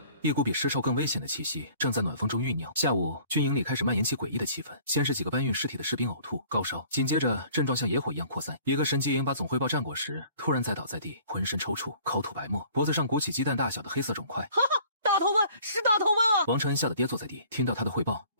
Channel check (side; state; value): both; inverted; correlation -0.52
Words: 一股比尸臭更危险的气息正在暖风中酝酿。下午，军营里开始蔓延起诡异的气氛。先是几个搬运尸体的士兵呕吐、高烧，紧接着症状像野火一样扩散。一个神机营把总汇报战果时，突然栽倒在地，浑身抽搐，口吐白沫，脖子上鼓起鸡蛋大小的黑色肿块。哈哈，大头瘟是大头瘟啊！王承恩吓得跌坐在地。听到他的汇报，